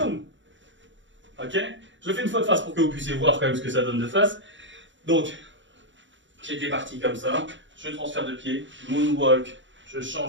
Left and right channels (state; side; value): late; left; 0.54 ms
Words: Ok? Je le fais une fois de face pour que vous puissiez voir quand même ce que ça donne de face. Donc, j'étais parti comme ça. Je transfère de pied. Moonwalk. Je